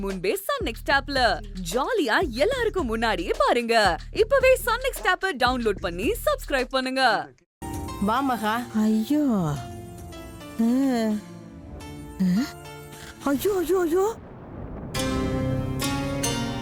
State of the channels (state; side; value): identical; both; correlation 1.00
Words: முன்பே சன் நெக்ஸ்ட் ஆப்ல ஜாலியா எல்லாருக்கும் முன்னாடியே பாருங்க. இப்பவே சன் நெக்ஸ்ட் ஆப்பை டவுன்லோட் பண்ணி சப்ஸ்கிரைப் பண்ணுங்க. வா மகா. ஐயோ ஐயோ ஐயோ ஐயோ,